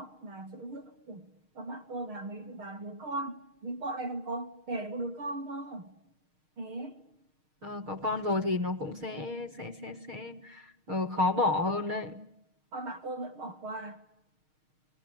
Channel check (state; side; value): late; left; 6.5 ms